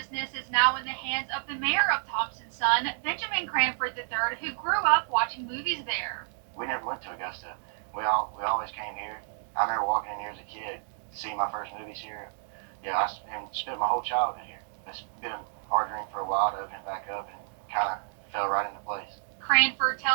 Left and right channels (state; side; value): silent; left; digital silence